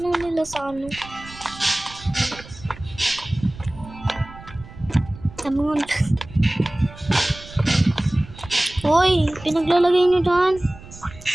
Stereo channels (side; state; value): right; noise; rumble, 17 dB below the sound